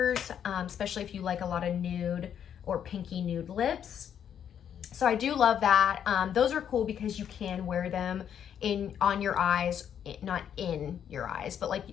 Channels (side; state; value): right; quieter; 8.9 dB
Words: especially if you like a lot of nude or pinky nude lips. So I do love that. Those are cool because you can wear them on your eyes, not in your eyes, but like